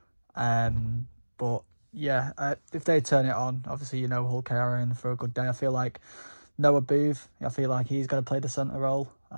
But yeah, if they turn it on, obviously, Hull KR are in for a good day. I feel like Noah Booth, I feel like he's going to play the centre role.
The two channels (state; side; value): inverted; both; correlation -1.00